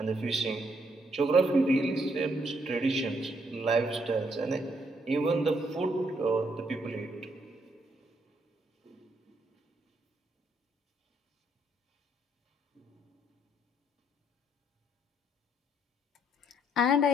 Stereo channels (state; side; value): normal; both; correlation 0.72